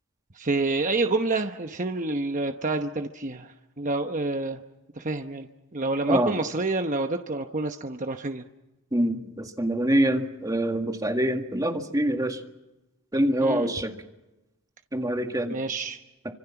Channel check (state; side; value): normal; both; correlation 0.56